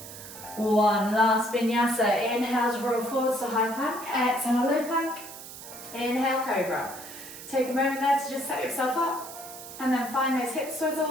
1. Last vinyasa. Inhale to roll forwards to high plank. Exhale, low plank. Inhale, cobra. Take a moment there to just set yourself up, and then find those hip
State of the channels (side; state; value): right; noise; hiss, 13 dB below the sound